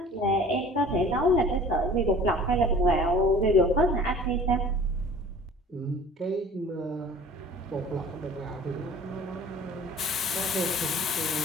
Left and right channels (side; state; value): both; normal; correlation 0.46